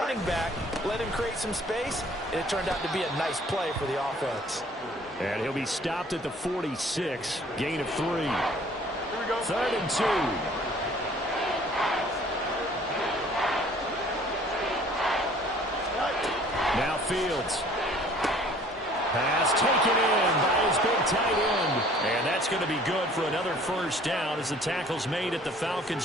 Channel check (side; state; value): both; normal; correlation 0.54